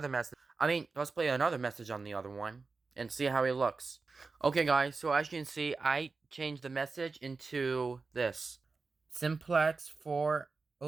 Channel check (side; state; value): left; quieter; 4.2 dB